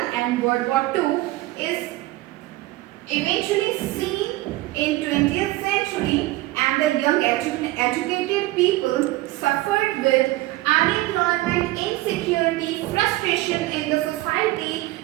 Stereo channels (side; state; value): left; quieter; 18.4 dB